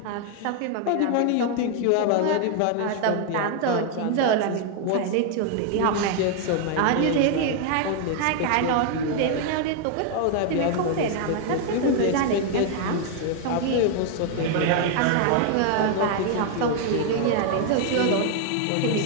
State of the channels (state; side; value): different; both; correlation 0.00